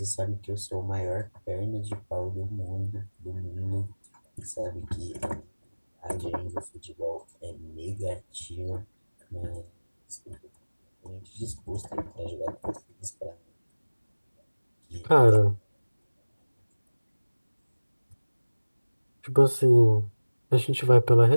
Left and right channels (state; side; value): inverted; both; correlation -1.00